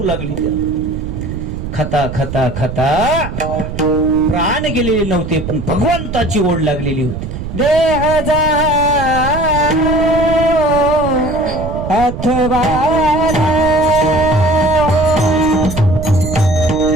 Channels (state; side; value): noise; right; rumble, 7 dB below the sound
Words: लागली. त्याला खाता खाता खाता प्राण गेलेले नव्हते, पण भगवंताची ओढ लागलेली होती. देह जा अथवा